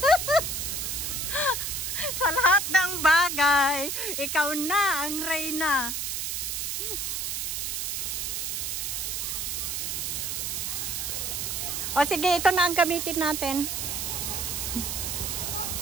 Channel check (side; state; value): right; noise; hiss, 2 dB below the sound